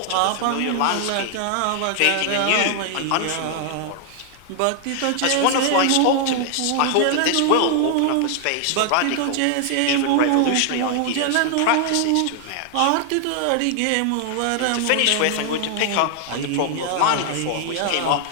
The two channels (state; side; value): different; both; correlation 0.00